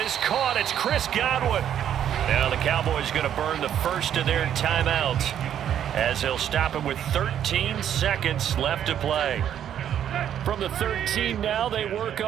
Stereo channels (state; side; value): quieter; left; 9.9 dB